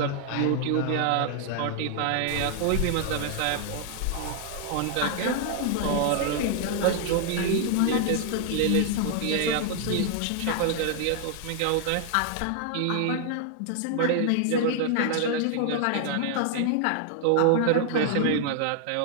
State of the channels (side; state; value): both; different; correlation 0.00